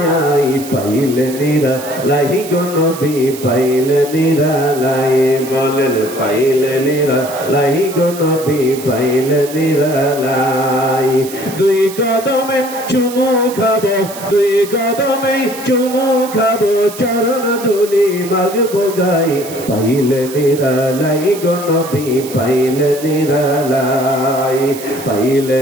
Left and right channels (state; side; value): noise; right; hiss, 14 dB below the sound